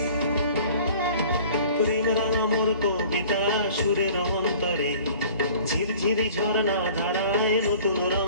প্রেম রাঙা মোর কবিতা সুরের অন্তরে ঝিরঝিরি ঝর্ণা ধারায় নতুন রং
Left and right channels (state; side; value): inverted; both; correlation -0.48